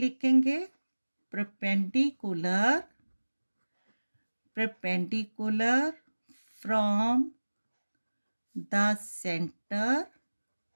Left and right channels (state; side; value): inverted; both; correlation -1.00